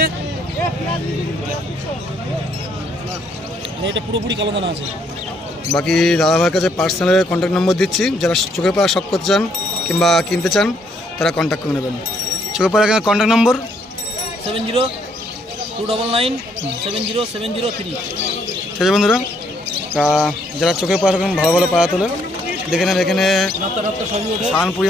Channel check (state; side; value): normal; both; correlation 0.69